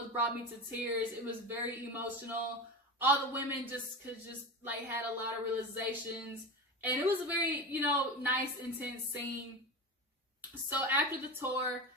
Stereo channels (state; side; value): normal; both; correlation 0.25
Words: brought me to tears. It was very emotional. All the women just had a lot of realizations. And it was a very, nice, intense scene. So after the tour,